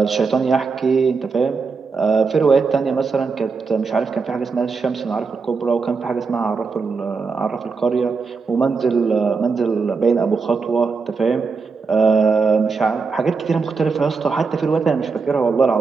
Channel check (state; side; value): quieter; left; 4.8 dB